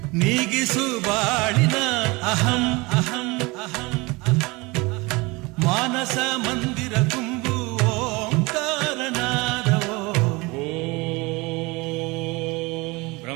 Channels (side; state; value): left; quieter; 24.7 dB